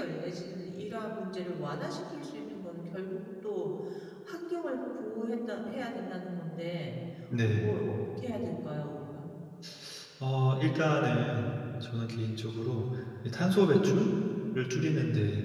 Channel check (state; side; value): identical; both; correlation 1.00